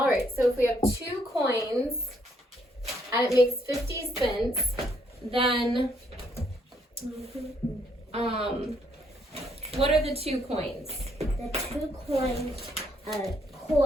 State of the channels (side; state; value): both; normal; correlation 0.71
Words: right, so if we have 2 coins and it makes 50 cents, then what are the 2 coins? The 2 coins are